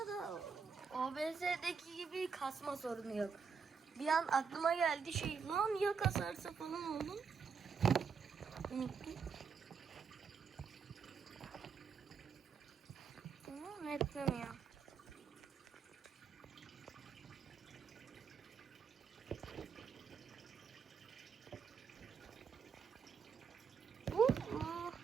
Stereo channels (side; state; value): left; quieter; 5.8 dB